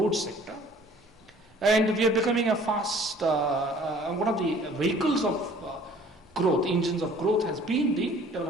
sector. And we are becoming a fast, one of the vehicles of growth, engines of growth has been the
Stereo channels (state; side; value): normal; both; correlation 0.53